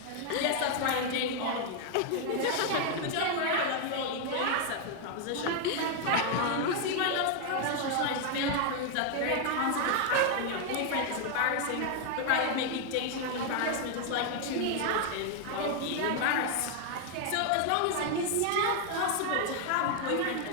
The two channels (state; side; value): different; both; correlation 0.00